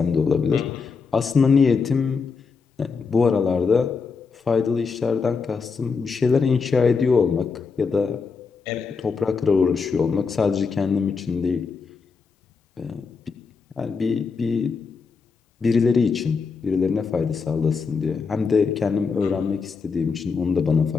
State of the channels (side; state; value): right; quieter; 5.1 dB